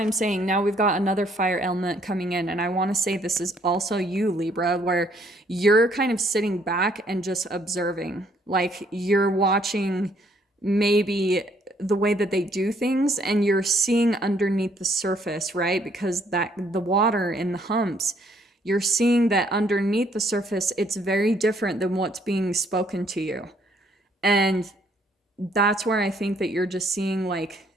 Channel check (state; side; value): normal; both; correlation 0.66